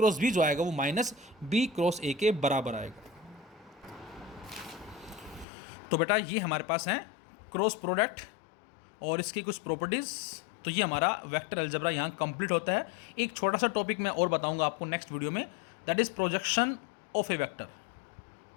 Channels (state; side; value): drops out; right; at 5.5 s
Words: बी जो आएगा वो माइनस बी क्रॉस ए के बराबर आएगा। तो बेटा ये हमारे पास है क्रॉस प्रोडक्ट और इसकी कुछ प्रॉपर्टीज़। तो ये हमारा वेक्टर अलजेब्रा यहाँ कंप्लीट होता है। एक छोटा सा टॉपिक मैं और बताऊंगा आपको नेक्स्ट वीडियो में, that is projection of A vector